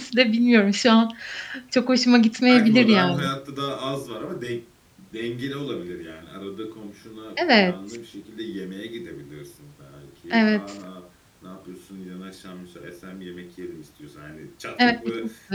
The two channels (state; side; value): identical; both; correlation 1.00